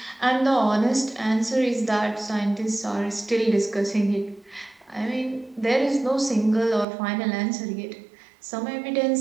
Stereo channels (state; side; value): drops out; left; at 6.9 s